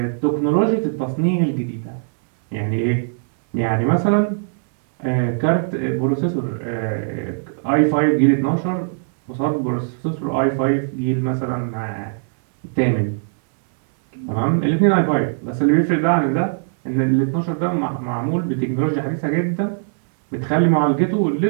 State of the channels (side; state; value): left; silent; 63 dB below the other